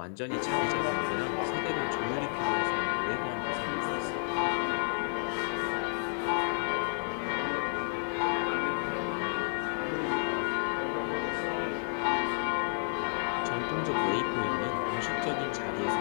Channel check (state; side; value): silent; right; digital silence